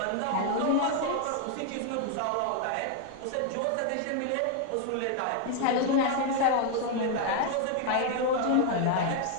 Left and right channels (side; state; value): both; different; correlation 0.00